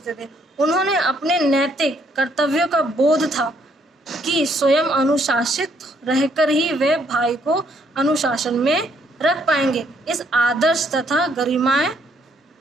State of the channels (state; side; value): normal; both; correlation 0.69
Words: थे। उन्होंने अपने नैतिक कर्तव्यों का बोध था कि स्वयं अनुशासित रहकर ही वे भाई को अनुशासन में रख पाएंगे। इस आदर्श तथा गरिमामय